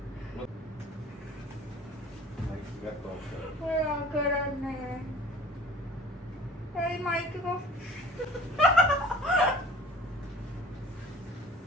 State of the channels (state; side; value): normal; both; correlation 0.46